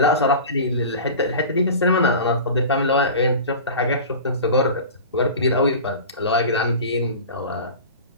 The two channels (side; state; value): both; inverted; correlation -0.35